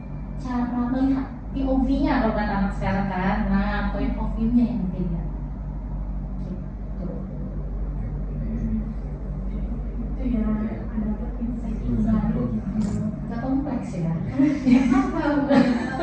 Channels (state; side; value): identical; both; correlation 1.00